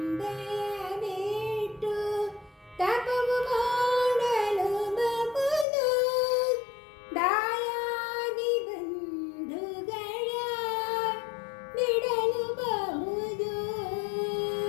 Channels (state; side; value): drops out; right; at 5.7 s